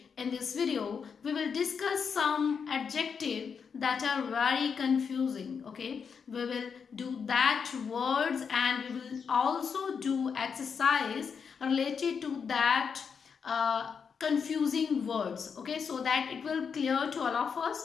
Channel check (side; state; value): right; quieter; 6.3 dB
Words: in this video, we will discuss some adjectives that are very confusing. Okay, we will do that words and we will also do exercise related to that confusing words, okay, so that it will clear to all of